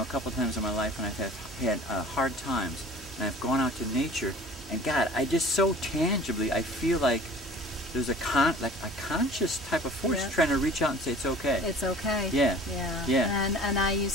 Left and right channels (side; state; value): both; normal; correlation 0.45